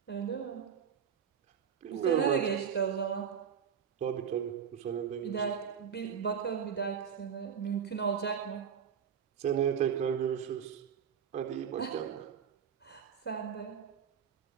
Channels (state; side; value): quieter; left; 7.6 dB